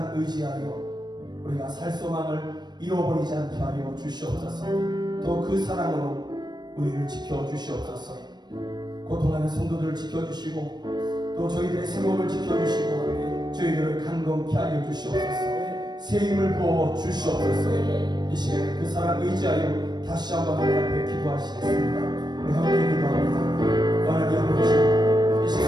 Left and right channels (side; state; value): left; late; 0.21 ms